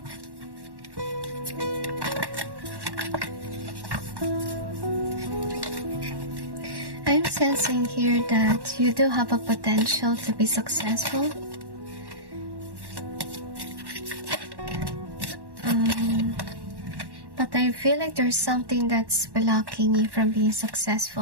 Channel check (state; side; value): late; left; 1.1 ms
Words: I'm sensing here that you do have a potential to be successful. But I feel like there's something that's blocking you from being